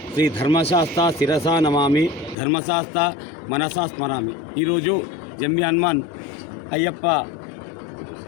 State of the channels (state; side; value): drops out; right; at 2.4 s